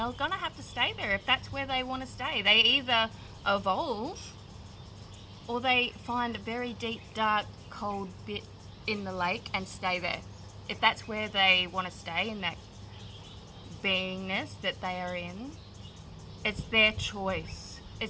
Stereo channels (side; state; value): both; identical; correlation 1.00